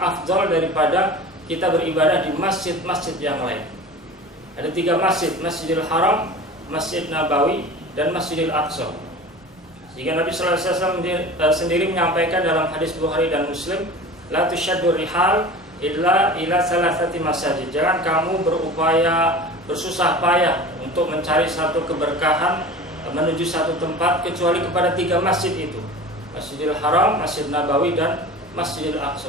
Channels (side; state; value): both; normal; correlation 0.36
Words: afdal daripada kita beribadah di masjid-masjid yang lain. Ada 3 masjid, Masjidil Haram, Masjid Nabawi, dan Masjidil Aqsa. Jika Nabi sallallahu alaihi wasallam sendiri menyampaikan dalam hadis Bukhari dan Muslim, la tusyaddu rihal illa ila salasati masajid. Jangan kamu berupaya bersusah payah untuk mencari satu keberkahan menuju satu tempat kecuali kepada 3 masjid itu, Masjidil Haram, Masjid Nabawi, dan Masjidil